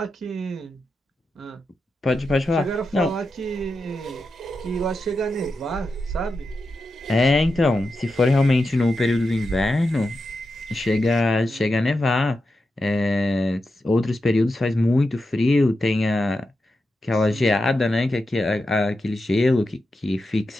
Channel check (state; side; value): normal; both; correlation 0.89